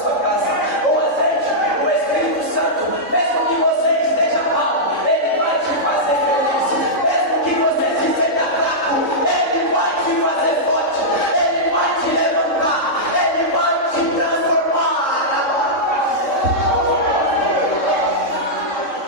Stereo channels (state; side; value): late; right; 3.6 ms